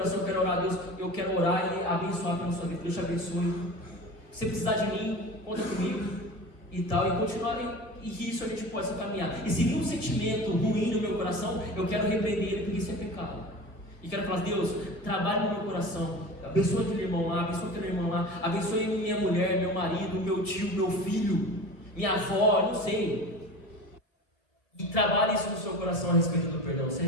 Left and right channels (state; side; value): late; right; 2.0 ms